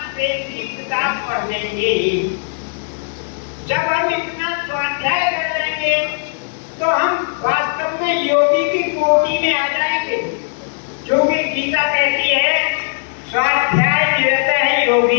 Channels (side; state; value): right; silent; digital silence